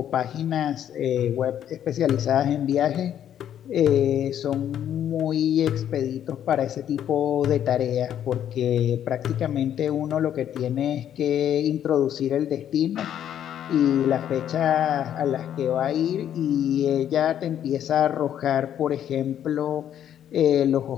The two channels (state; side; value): quieter; right; 10.2 dB